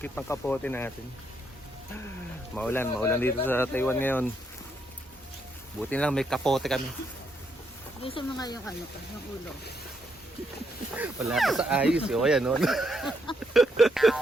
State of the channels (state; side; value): normal; both; correlation 0.76